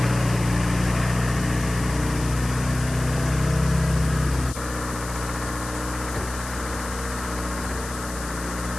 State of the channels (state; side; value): noise; left; hiss, 12 dB below the sound